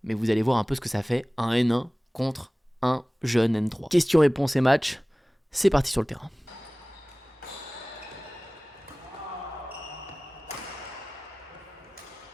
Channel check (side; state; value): both; normal; correlation 0.98